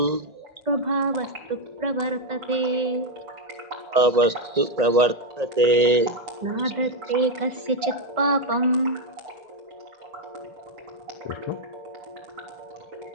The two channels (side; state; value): left; late; 1.9 ms